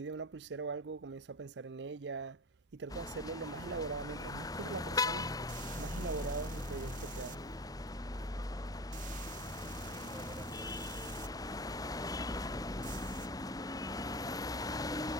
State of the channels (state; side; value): normal; both; correlation 0.28